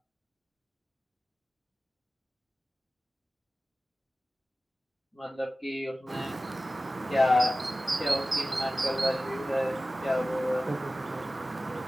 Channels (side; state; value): both; normal; correlation 0.96